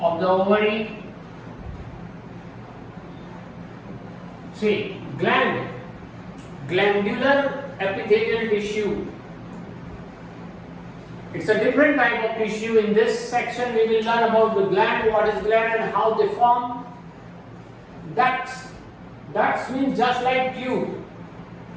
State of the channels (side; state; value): both; identical; correlation 1.00